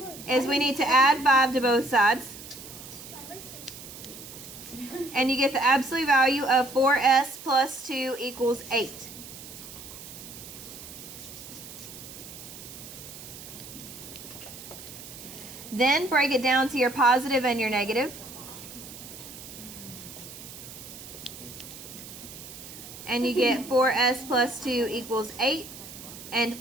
is we need to add 5 to both sides. And you get the absolute value of 4s plus 2 equals 8. Then break it down to your positive and your negative. And you get 4s plus 2 equals 8. And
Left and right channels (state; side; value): noise; right; hiss, 14 dB below the sound